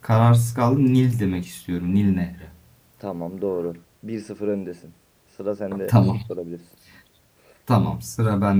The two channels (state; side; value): identical; both; correlation 1.00